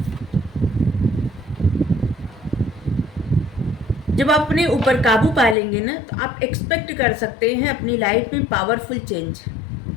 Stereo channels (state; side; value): drops out; right; at 5.6 s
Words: जब आप अपने ऊपर काबू पा लेंगे ना, तो आप एक्सपेक्ट कर सकते हैं अपनी लाइफ में पावरफुल चेंज।